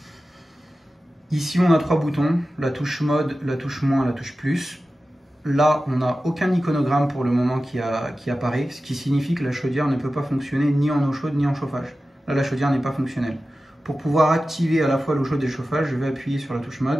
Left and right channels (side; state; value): both; normal; correlation 0.94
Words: Ici, on a 3 boutons, la touche mode, la touche moins, la touche plus. Là, on n'a aucun iconogramme pour le moment qui apparaît, ce qui signifie que la chaudière ne peut pas fonctionner ni en eau chaude ni en chauffage. Là, la chaudière n'est pas fonctionnelle. Pour pouvoir activer à la fois l'eau chaude et le chauffage, je vais appuyer sur la touche